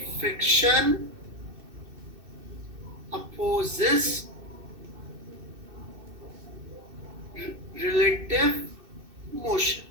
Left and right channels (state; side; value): late; left; 2.6 ms